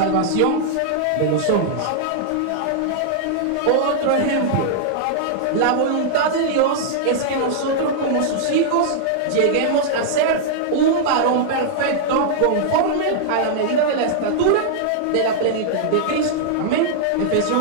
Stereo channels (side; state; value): both; different; correlation -0.01